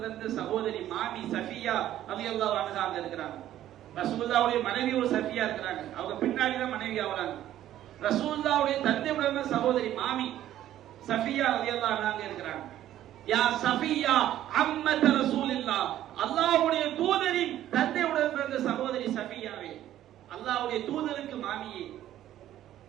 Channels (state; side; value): quieter; left; 12.5 dB